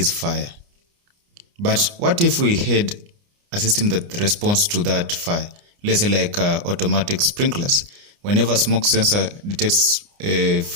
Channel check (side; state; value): left; late; 29 ms